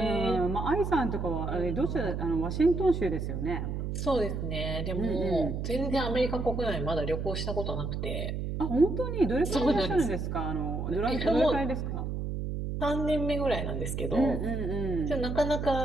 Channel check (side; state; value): right; noise; hum, 3 dB below the sound